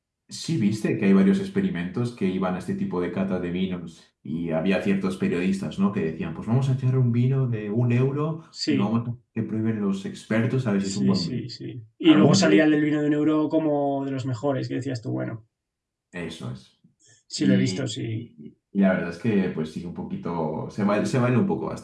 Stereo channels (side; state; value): both; identical; correlation 1.00